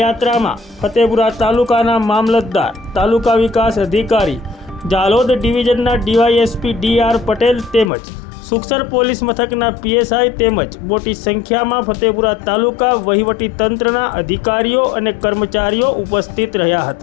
યાત્રામાં ફતેપુરા તાલુકાના મામલતદાર, તાલુકા વિકાસ અધિકારી, જાલોદ ડિવિઝનના ડીવાયએસપી ડી.આર. પટેલ તેમજ સુખસર પોલીસ મથકના પીએસઆઈ તેમજ મોટી સંખ્યામાં ફતેપુરા તાલુકા વહીવટી તંત્રના અધિકારીઓ અને કર્મચારીઓ ઉપસ્થિત રહ્યા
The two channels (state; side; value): drops out; right; at 7.9 s